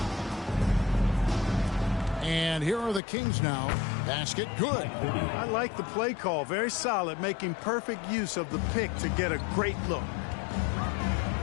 And here are the Kings now. Basket good. I like the play call. Very solid, making perfect use of the pick to get a great look.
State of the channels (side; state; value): right; drops out; at 3.0 s